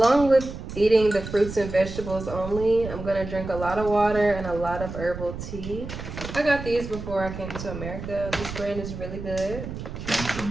with eating the fruits and vegetables only, I'm gonna drink a lot of water and a lot of herbal tea. I got these before I came to America. This brand is really good. Came to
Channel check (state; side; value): noise; right; rumble, 9 dB below the sound